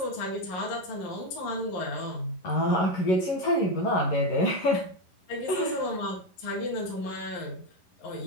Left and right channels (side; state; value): right; late; 11 ms